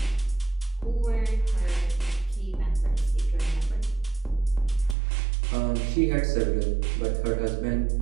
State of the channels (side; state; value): left; drops out; at 5.0 s